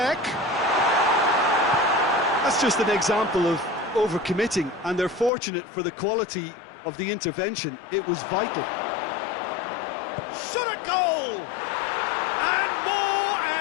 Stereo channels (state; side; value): drops out; right; at 5.3 s